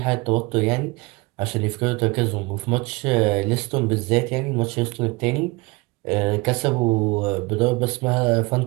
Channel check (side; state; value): left; quieter; 25.1 dB